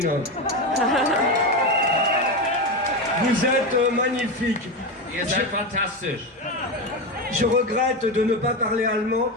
Vous êtes magnifique. Ihr seid fantastisch. Je regrette de ne pas parler allemand,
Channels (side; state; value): both; normal; correlation 0.16